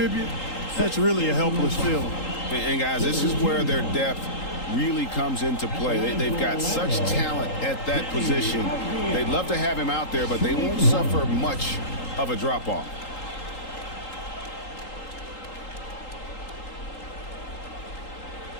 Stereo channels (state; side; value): late; right; 3.8 ms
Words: that's really a helpless feeling. And guys, this is where their depth really comes into play. They've got such talent at that position. They'd love to have him out there, but they won't suffer much of a drop-off.